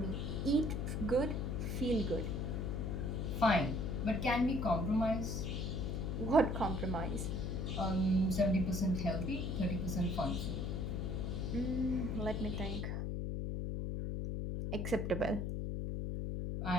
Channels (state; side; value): noise; left; hum, 1 dB below the sound